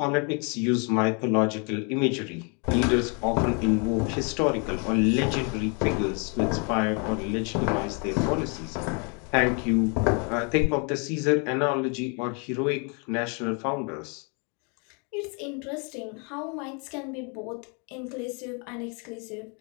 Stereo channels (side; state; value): right; quieter; 35.6 dB